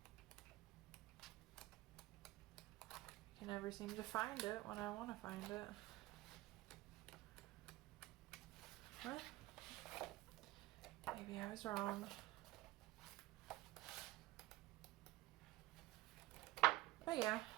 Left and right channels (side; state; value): left; quieter; 17.7 dB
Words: I can never seem to find it when I want to find it. What? Maybe I was wrong. But yeah,